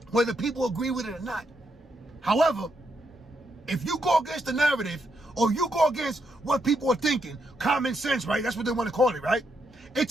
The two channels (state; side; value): normal; both; correlation 0.79